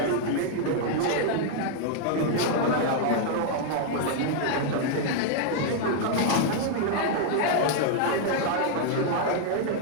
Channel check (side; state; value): both; different; correlation 0.00